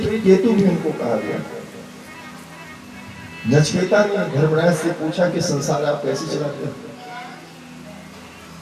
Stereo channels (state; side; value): identical; both; correlation 1.00